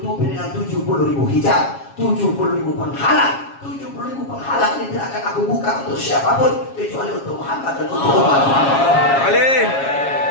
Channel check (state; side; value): late; right; 7.3 ms